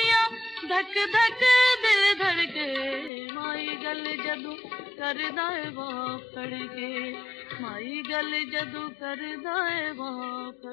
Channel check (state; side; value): drops out; right; at 3.1 s